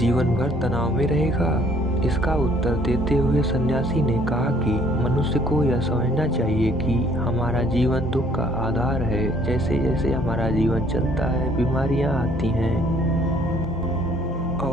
भर तनाव में रहेगा? इसका उत्तर देते हुए सन्यासी ने कहा कि मनुष्य को यह समझना चाहिए कि हमारा जीवन दुख का आधार है। जैसे जैसे हमारा जीवन चलता है, बीमारियां आती हैं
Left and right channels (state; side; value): normal; both; correlation 0.60